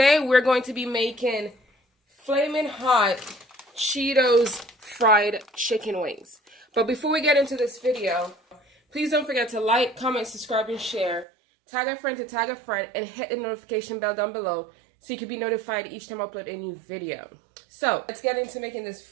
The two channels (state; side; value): drops out; left; at 11.2 s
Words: we're going to be making Flamin' Hot Cheetos fried chicken wings. But before we get into this video, please don't forget to like, comment, subscribe, and share. Tag a friend to tag a friend, and hit the notification bell down below so you can be notified each time I upload a new video. So let's get into making this